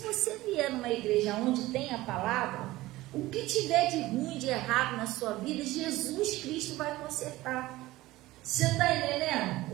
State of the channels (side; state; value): left; quieter; 17.9 dB